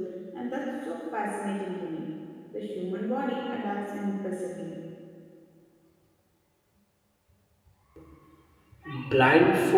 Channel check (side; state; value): both; identical; correlation 1.00